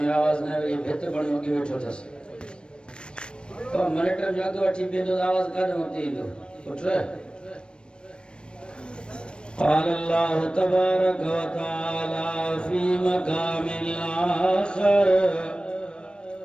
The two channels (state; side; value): late; right; 0.055 ms